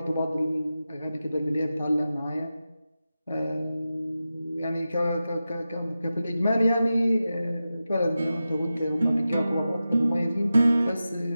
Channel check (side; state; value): both; inverted; correlation -0.93